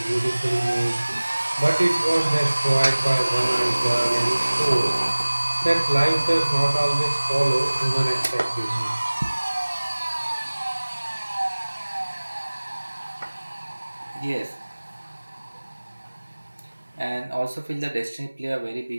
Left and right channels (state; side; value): inverted; both; correlation -1.00